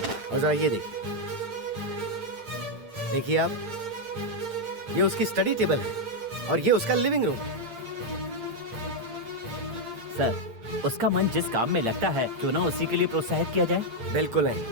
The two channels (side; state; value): left; late; 8.7 ms